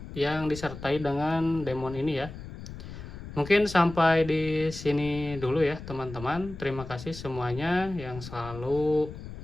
yang disertai dengan demon ini ya. Mungkin sampai di sini dulu ya teman-teman. Terima kasih semuanya yang selalu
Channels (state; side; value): noise; left; rumble, 12 dB below the sound